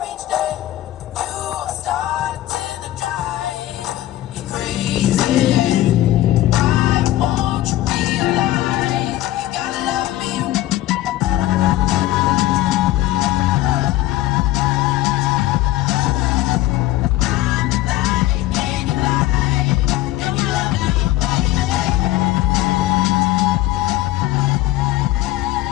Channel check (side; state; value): right; quieter; 15.4 dB